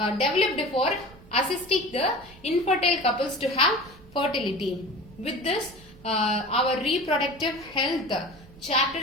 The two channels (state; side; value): noise; right; rumble, 22 dB below the sound